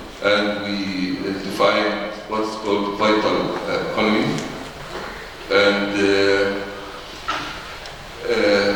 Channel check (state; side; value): identical; both; correlation 1.00